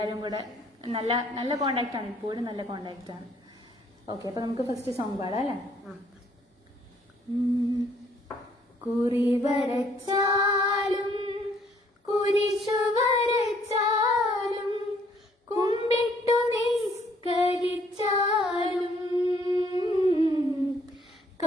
കൂടെ നല്ല നല്ല കോണ്ടാക്റ്റാണ്. ഇപ്പോഴും നല്ല കോണ്ടാക്റ്റാണ്. ഓക്കെ. അപ്പോൾ നമുക്ക് ഫസ്റ്റ് സോങ് പാടാം അല്ലേ? കുറി വരച്ചാലും കുരിശു വരച്ചാലും കുമ്പിട്ടു നിസ്കരിച്ചാലും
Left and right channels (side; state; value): both; normal; correlation 0.64